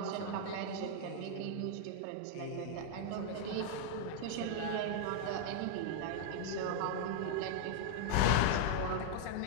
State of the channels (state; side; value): different; both; correlation -0.01